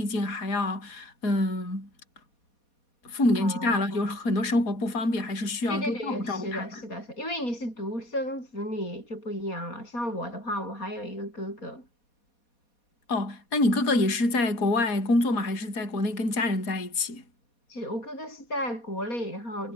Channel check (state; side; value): late; right; 4.2 ms